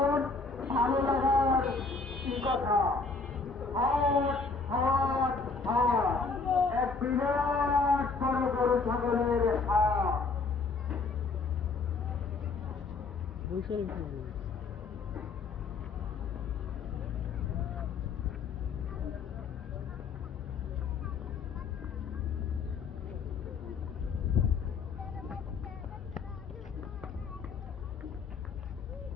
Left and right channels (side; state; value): right; quieter; 4.3 dB